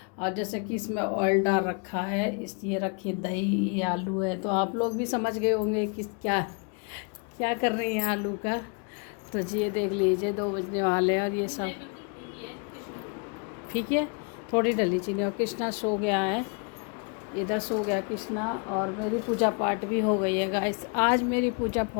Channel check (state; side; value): quieter; right; 36.9 dB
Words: और जैसे कि इसमें ऑयल डाल रखा है, इस ये रखी दही, ये आलू है। तो आप लोग भी समझ गए होंगे कि क्या क्या कर रही हैं आलू का। तो जी ये देख लीजिए 2 बजने वाले हैं और ये सब ठीक है। थोड़ी डली चीनी। और कृष्णा सो गया है, इधर सो गया कृष्णा। और मेरी पूजा पाठ भी हो गई है गाइस। आज मेरी पूजा